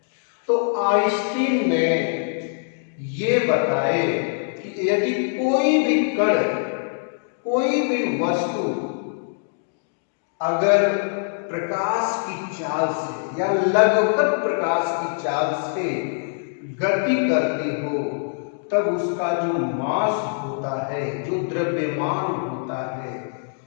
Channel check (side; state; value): right; silent; digital silence